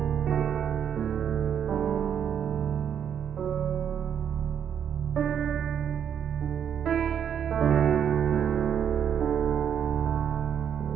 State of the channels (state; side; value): quieter; left; 8.5 dB